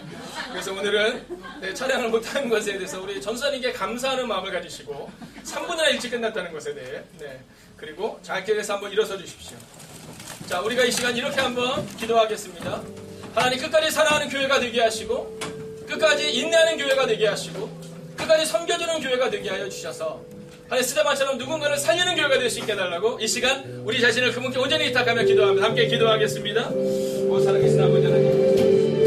그래서 오늘은 찬양을 못하는 것에 대해서 우리 전사님께 감사하는 마음을 가지시고 3분이나 일찍 끝났다는 것에 대해 그리고 자기에서 한번 일어서 주십시오. 자, 우리가 이 시간 이렇게 한번 기도하겠습니다. 하나님 끝까지 사랑하는 교회가 되게 하시고 끝까지 인내하는 교회가 되게 하시고 끝까지 섬겨주는 교회가 되게 하여 주셔서 하나님 스데반처럼 누군가를 살리는 교회가 될 수 있게 해달라고 이 시간 우리 자신을 그분께 온전히 위탁하며 기도합니다. 함께 기도하겠습니다. 오 살아계신 아버지 하나님,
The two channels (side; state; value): both; identical; correlation 1.00